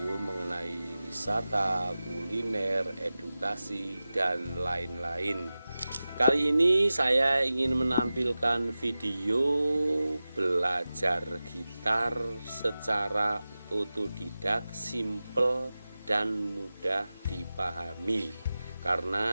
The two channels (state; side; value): inverted; both; correlation -0.95